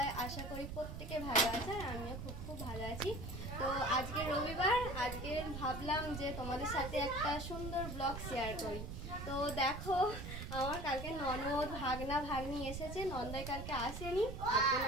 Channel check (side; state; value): right; noise; rumble, 7 dB below the sound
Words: আশা করি প্রত্যেকে ভালো আছে আর আমিও খুব ভালো আছি। তো আজকে রবিবার, আজকে ভাবলাম যে তোমাদের সাথে একটা সুন্দর ব্লগ শেয়ার করি। তো দেখো, আমার কালকে ননদ ভাগনা ভাগ্নি এসেছে, নন্দাই কালকে আসেনি, আজকে